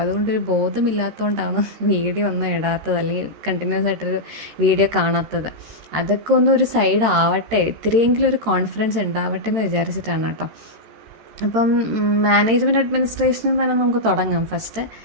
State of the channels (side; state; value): left; late; 13 ms